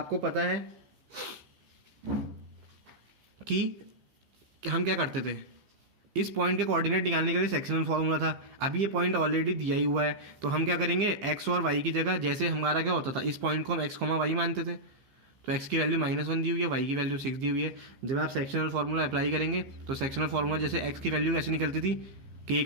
पता है कि हम क्या करते थे, इस पॉइंट के कोऑर्डिनेट निकालने के लिए सेक्शनल फॉर्मूला था। अभी ये पॉइंट ऑलरेडी दिया ही हुआ है, तो हम क्या करेंगे, एक्स और वाई की जगह, जैसे हमारा क्या होता था, इस पॉइंट को हम एक्स कॉमा वाई मानते थे, तो एक्स की वैल्यू -1 दी हुई है, वाई की वैल्यू 6 दी हुई है। जब आप सेक्शनल फार्मूला अप्लाई करेंगे तो सेक्शनल फार्मूला जैसे एक्स की वैल्यू कैसे निकलती थी, के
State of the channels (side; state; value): left; late; 15 ms